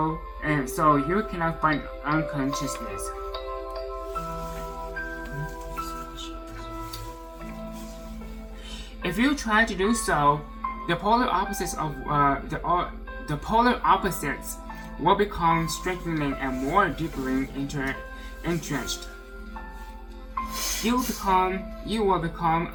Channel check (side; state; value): both; identical; correlation 1.00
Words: you cannot fight unconsciousness. If you try to do so, the polar opposites will become strengthening and more deeply entrenched. You will become